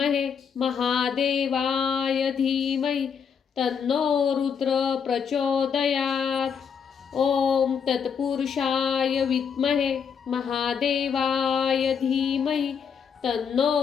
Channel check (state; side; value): quieter; right; 6.9 dB